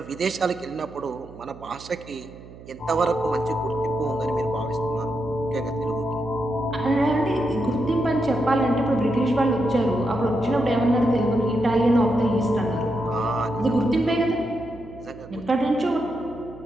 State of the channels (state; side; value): noise; right; hum, 18 dB below the sound